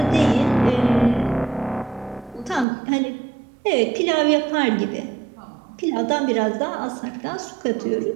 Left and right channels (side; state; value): left; drops out; at 2.7 s